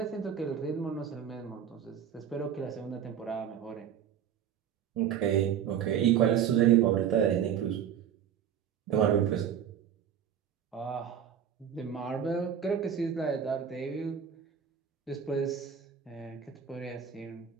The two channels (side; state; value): left; quieter; 8.6 dB